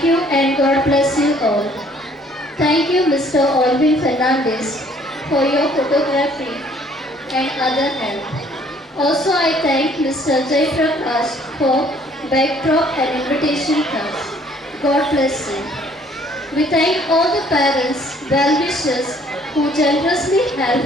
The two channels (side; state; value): both; normal; correlation 0.60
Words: you and God bless you all. Thank you Mr. Alvin Fernandez for your photography and other help. Also, I thank Mr. Jay Prakash for backdrop and invitation cards. God bless you. We thank all the parents, well-wishers who generously